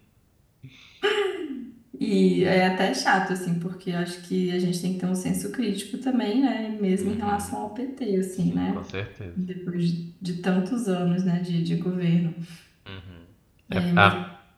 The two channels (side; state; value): both; identical; correlation 1.00